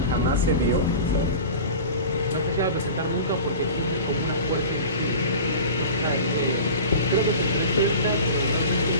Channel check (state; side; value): inverted; both; correlation -0.35